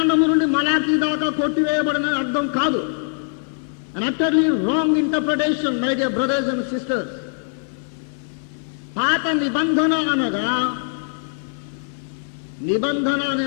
నుండి మలాకీ దాకా కొట్టివేయబడిన అర్థం కాదు. An utterly wrong interpretation, my dear brothers and sisters. పాత నిబంధన అనగా, నిబంధన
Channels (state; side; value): silent; right; digital silence